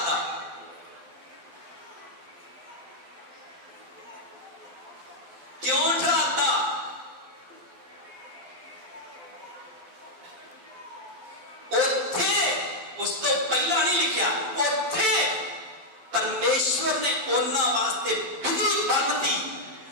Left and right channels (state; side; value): late; left; 11 ms